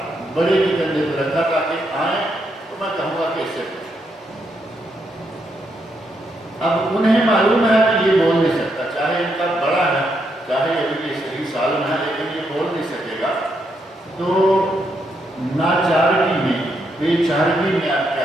بڑے کے کندھے پر رکھا تاکہ آئیں تو میں کہوں گا کہ اس سے پوچھو۔ اب انہیں معلوم ہے کہ یہ بول نہیں سکتا، چاہے ان کا بڑا ہے، چاہے ابھی صحیح سال میں ہے، لیکن یہ بول نہیں سکے گا۔ تو ناچارگی میں، بے چارگی میں آپ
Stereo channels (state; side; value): normal; both; correlation 0.79